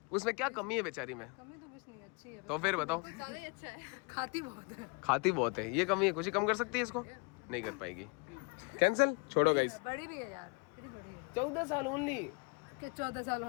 उसमें क्या कमी है बेचारी में, कमी तो कुछ नहीं, अच्छी है, तो फिर बताओ। ज्यादा ही अच्छा है, खाती बहुत है। खाती बहुत है, ये कमी है। खुशी कम कर सकती है इसको? नहीं कर पाएगी, कैंसिल। छोड़ो गाइस। बड़ी भी है यार, कितनी बड़ी है? 14 साल ओनली। क्या 14 साल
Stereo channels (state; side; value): quieter; right; 32.3 dB